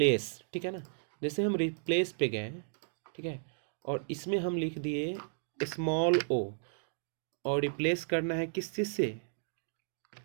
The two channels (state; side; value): silent; left; digital silence